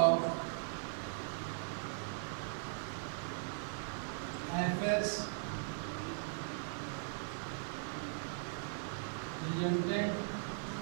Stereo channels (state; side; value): silent; left; digital silence